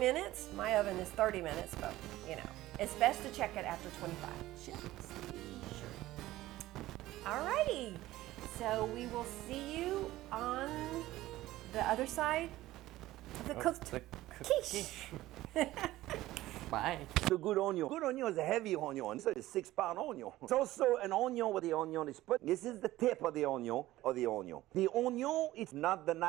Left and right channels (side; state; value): left; quieter; 16.2 dB